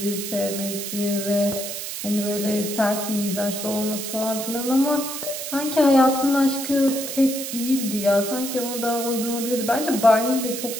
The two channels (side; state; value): right; noise; hiss, 6 dB below the sound